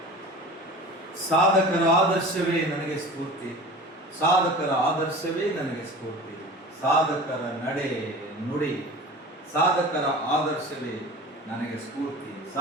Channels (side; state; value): both; normal; correlation 0.37